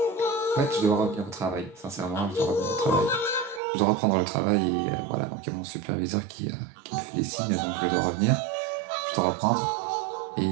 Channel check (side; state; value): left; drops out; at 3.6 s